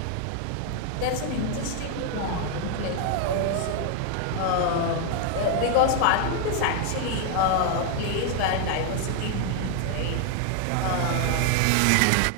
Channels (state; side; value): different; both; correlation 0.00